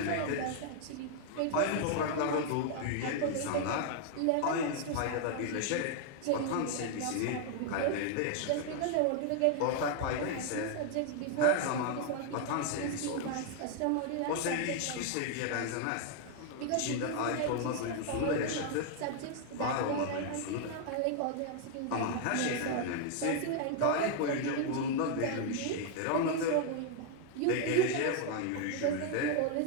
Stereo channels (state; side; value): different; both; correlation 0.00